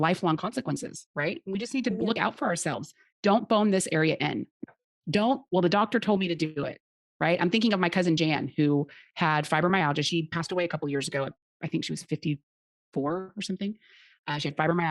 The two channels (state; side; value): identical; both; correlation 1.00